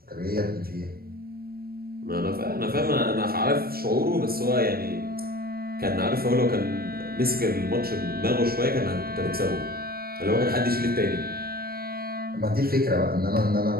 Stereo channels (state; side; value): late; left; 0.44 ms